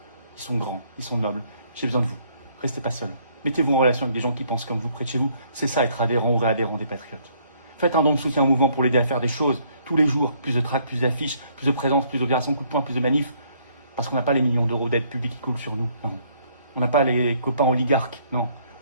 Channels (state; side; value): inverted; both; correlation -0.65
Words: ils sont grands, ils sont nobles. J'ai besoin de vous. Restez pas seuls. Mettez-vous en relation avec des gens qui pensent comme vous près de chez vous. C'est ça, être adhérent ou réadhérent des patriotes. Faites un don de soutien au mouvement pour l'aider à faire des choses tous les jours. Plus de tracts, plus d'affiches, plus de présence, plus d'opérations, coup de poing, plus de manifs. Parce qu'on n'a pas les millions d'euros d'aide publique qui coulent sur nous. Non. On n'a pas les copains oligarques. Non.